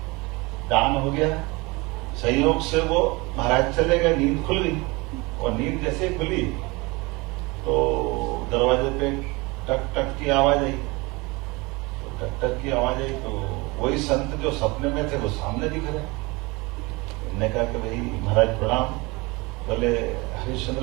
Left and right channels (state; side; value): quieter; left; 24.9 dB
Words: दान हो गया, संयोग से वो महाराज चले गए, नींद खुल गई, और नींद जैसे खुली तो दरवाजे पे टक टक की आवाज आई। तो टक टक की आवाज आई तो वही संत जो सपने में थे वो सामने दिख रहे। उन्होंने कहा कि भाई महाराज प्रणाम। बोले